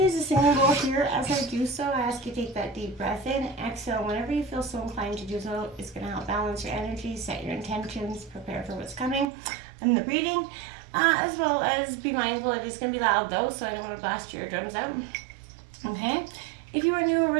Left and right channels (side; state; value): left; drops out; at 9.2 s